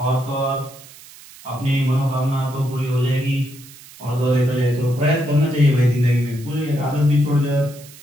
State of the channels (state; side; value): noise; right; hiss, 20 dB below the sound